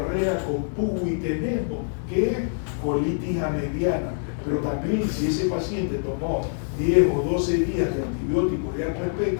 con pugo y tenemos, que es colitis amediana. Pero también si ese paciente tomó 10 o 12 días de antibióticos de alto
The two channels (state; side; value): silent; right; digital silence